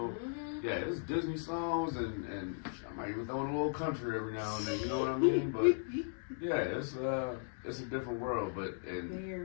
yeah, it's Disney songs, and I might even throw in a little country every now and then. You know what I mean? But yeah, it's a different world. But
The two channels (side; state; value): right; silent; digital silence